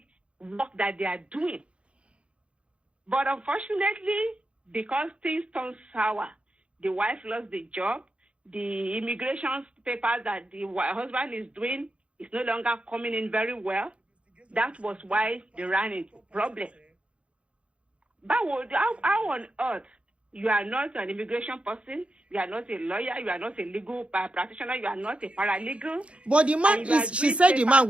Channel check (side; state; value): left; late; 0.060 ms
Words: work that they are doing. But unfortunately, because things turn sour, the wife lost the job, the immigration papers that the husband is doing is no longer coming in very well. That was why they ran into problem. But how on earth you are not an immigration person, you are not a lawyer, you are not a legal practitioner, you are not a paralegal. But the man she said the man